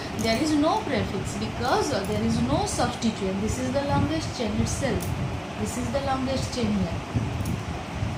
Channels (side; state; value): both; identical; correlation 1.00